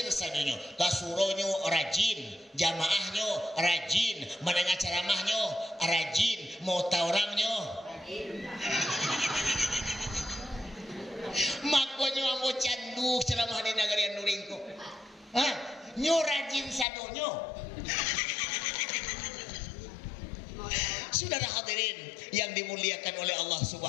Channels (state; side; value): drops out; right; at 16.9 s